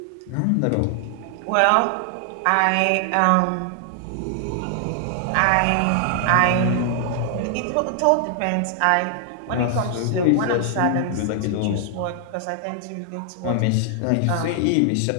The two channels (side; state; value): both; different; correlation 0.00